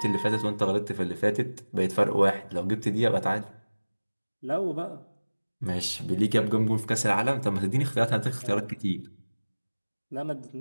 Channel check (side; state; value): both; inverted; correlation -1.00